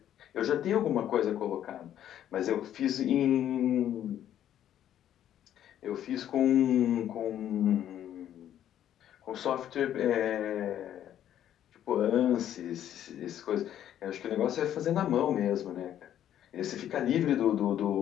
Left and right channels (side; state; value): right; quieter; 11.0 dB